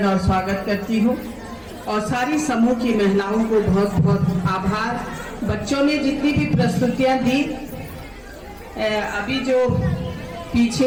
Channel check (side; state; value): both; identical; correlation 1.00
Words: और स्वागत करती हूँ। और सारी समूह की महिलाओं को बहुत बहुत आभार। बच्चों ने जितनी भी प्रस्तुतियाँ दी, अभी जो